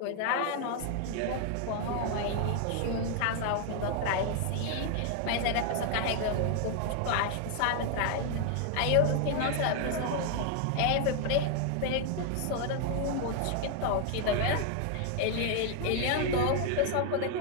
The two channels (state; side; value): different; both; correlation 0.00